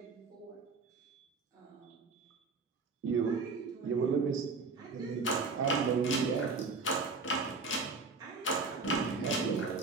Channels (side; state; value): left; quieter; 4.2 dB